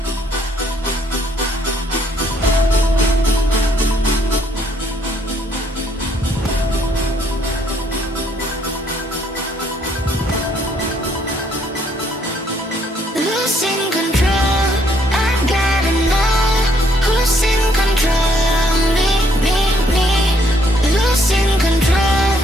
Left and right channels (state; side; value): normal; both; correlation 0.68